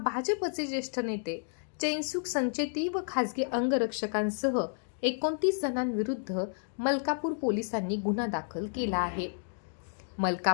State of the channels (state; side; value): silent; right; digital silence